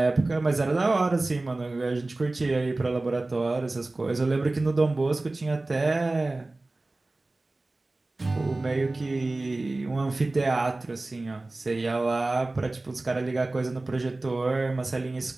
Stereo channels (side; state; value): left; quieter; 3.0 dB